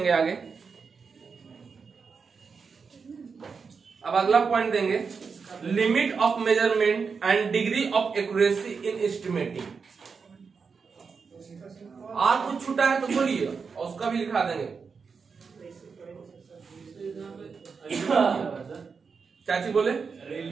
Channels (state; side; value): quieter; left; 5.4 dB